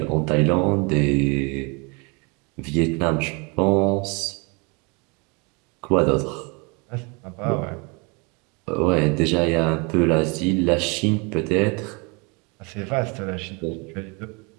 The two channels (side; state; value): left; quieter; 30.6 dB